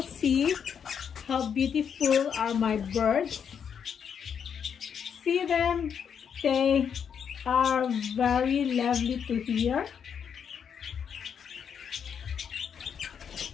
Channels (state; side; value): quieter; right; 7.5 dB